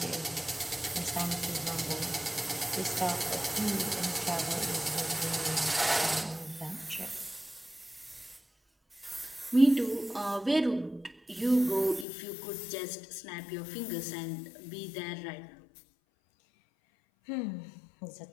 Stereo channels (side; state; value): right; drops out; at 12.1 s